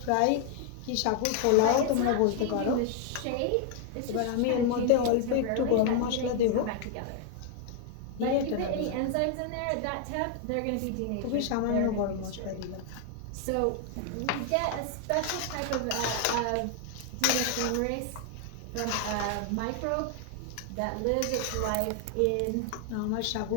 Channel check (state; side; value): different; both; correlation 0.00